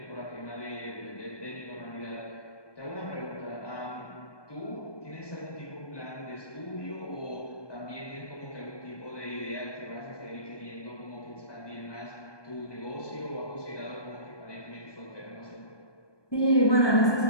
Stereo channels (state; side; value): late; right; 1.2 ms